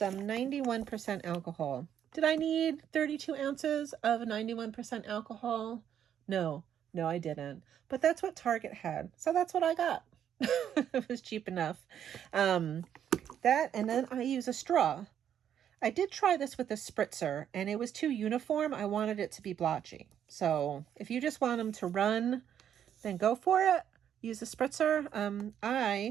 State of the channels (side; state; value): left; quieter; 9.4 dB